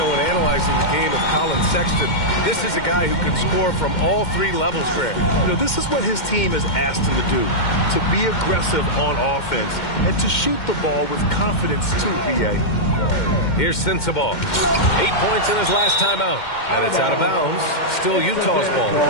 when analyzing the game of Colin Sexton, this is a guy who can score from all 3 levels, Greg. You know, this is what his team has asked him to do, to be aggressive on offense and to shoot the ball with confidence too, B.A. Here's Sensabaugh. 8 points in his last timeout. And it's out of bounds. Still Utah's ball.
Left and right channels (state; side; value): late; right; 2.1 ms